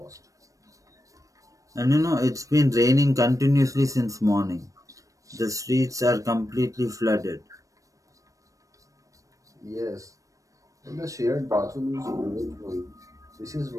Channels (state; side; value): late; left; 0.16 ms